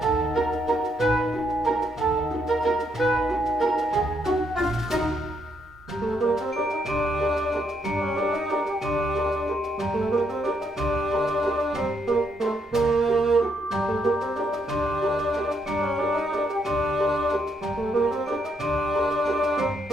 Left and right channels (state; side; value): normal; both; correlation 0.76